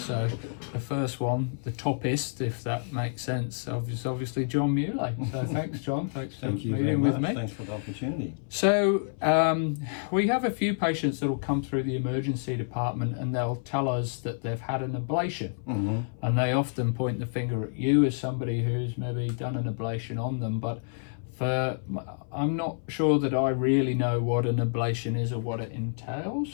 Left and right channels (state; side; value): silent; right; 57 dB below the other